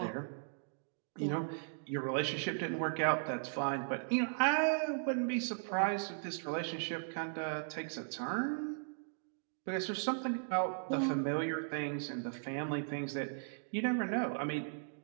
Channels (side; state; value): left; silent; digital silence